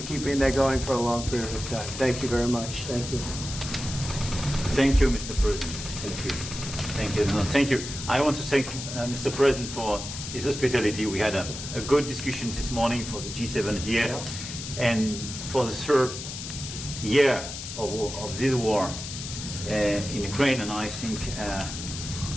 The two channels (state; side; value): noise; left; hiss, 8 dB below the sound